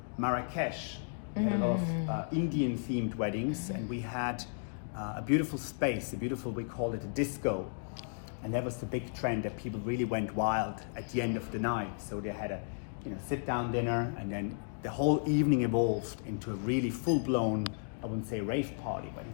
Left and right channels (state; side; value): silent; right; digital silence